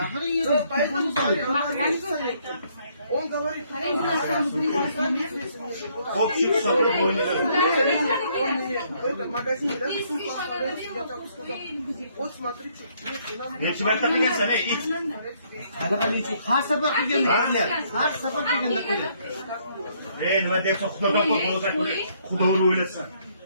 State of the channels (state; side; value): inverted; both; correlation -0.68